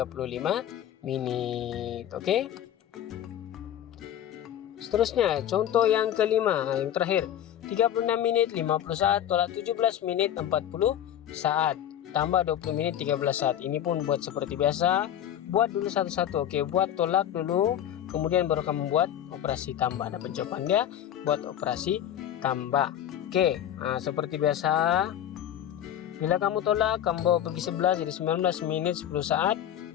menit. Oke. Seterusnya contoh yang kelima, yang terakhir. 36 menit 50 saat tolak 17 menit 40 saat. Tambah 20 menit 13 saat. Ini pun buat seperti biasa. Buat dulu satu-satu. Oke, buat tolak dulu. Kemudian baru kamu buat operasi tambah. Dapat jawaban dia. Buat operasi tambah. Oke, nah, seperti biasa. Bila kamu tolak, kamu bawa pergi 11 jadi 19 menit 10 saat.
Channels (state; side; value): quieter; right; 10.7 dB